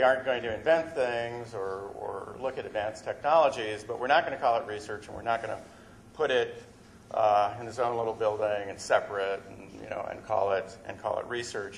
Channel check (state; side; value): identical; both; correlation 1.00